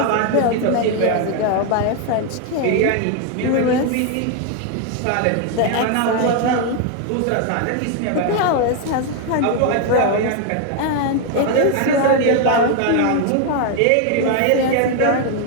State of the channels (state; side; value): different; both; correlation 0.01